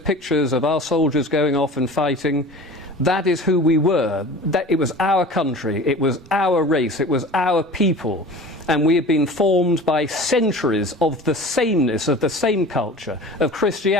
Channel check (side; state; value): both; normal; correlation 0.39